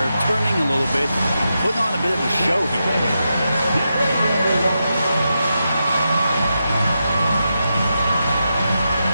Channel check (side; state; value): both; inverted; correlation -0.87